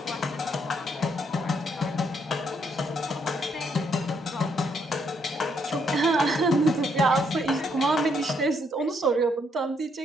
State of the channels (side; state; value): both; normal; correlation 0.73